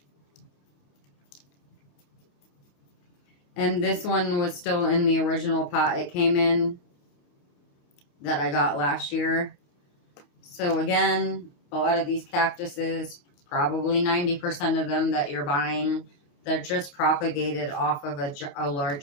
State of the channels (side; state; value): right; late; 28 ms